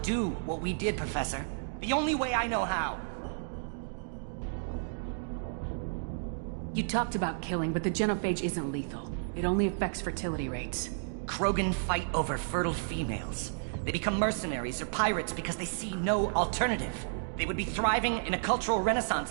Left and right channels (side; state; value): left; silent; digital silence